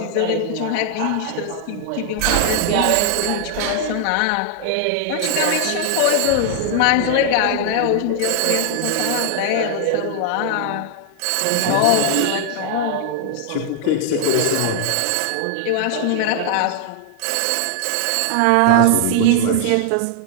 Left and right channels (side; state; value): both; different; correlation 0.00